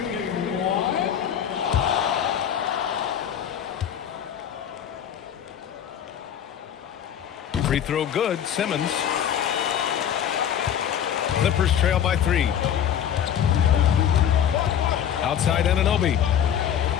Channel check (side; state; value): right; quieter; 9.3 dB